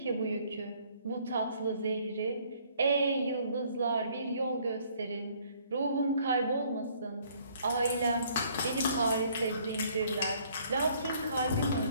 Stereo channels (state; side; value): inverted; both; correlation -0.62